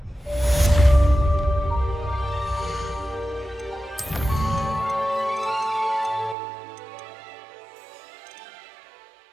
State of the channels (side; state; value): left; drops out; at 6.4 s